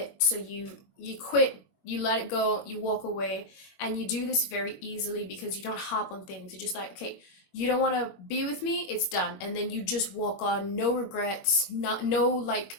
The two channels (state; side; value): late; right; 21 ms